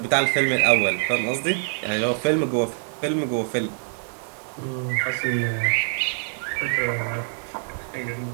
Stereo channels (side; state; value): left; silent; 62 dB below the other